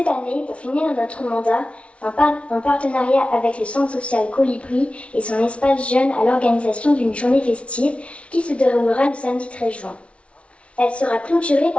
année, pour finir notre mandat, en partenariat avec le Centre social Colibri et son espace jeune à l'organisation d'une journée festive qui se déroulera le samedi 13 juin. Elle sera clôturée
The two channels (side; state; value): right; late; 0.061 ms